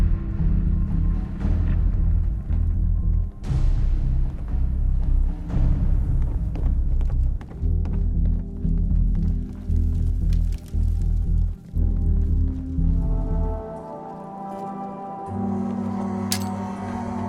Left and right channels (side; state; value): both; identical; correlation 1.00